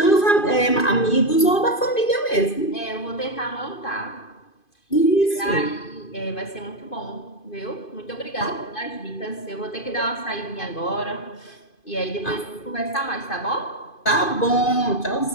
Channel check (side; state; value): right; late; 2.5 ms